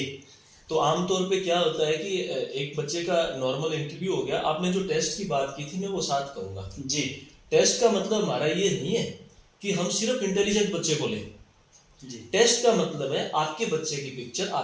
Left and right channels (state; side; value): identical; both; correlation 1.00